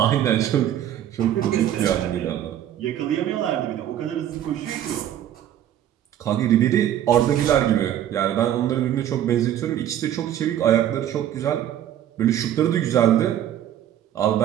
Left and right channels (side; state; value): left; quieter; 11.1 dB